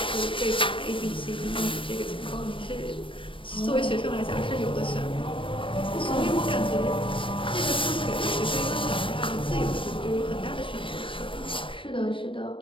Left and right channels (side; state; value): right; late; 0.25 ms